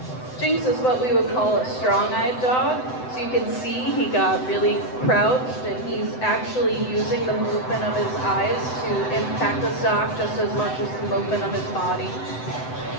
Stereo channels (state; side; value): late; right; 7.9 ms